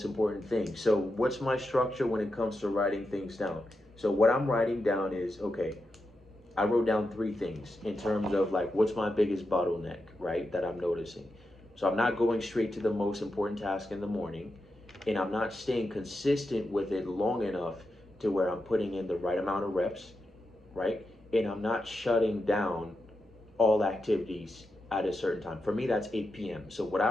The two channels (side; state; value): both; normal; correlation 0.88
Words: important thing. So what's my structure when it comes to writing things down? So what I'm writing down is, okay, I wrote down 3 things in terms of like what's my biggest bottleneck, right, that I'm noticing. So I'm not going straight to the most important task in the morning, and I'm not staying consistent with it long enough to where I'm putting in the right amount of reps, right? And I'm not shutting down all activities at a certain time. For me, that's 8 p.m. So what I